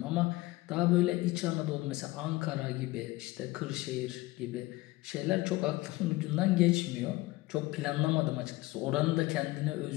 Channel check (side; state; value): right; quieter; 19.7 dB